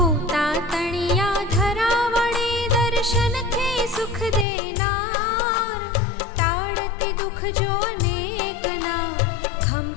दर्शन थे सुख देनार। टाड़ती दुख जो अनेक ना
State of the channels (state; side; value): drops out; right; at 4.5 s